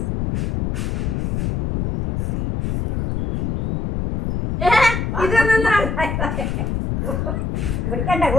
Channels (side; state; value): left; noise; rumble, 1 dB below the sound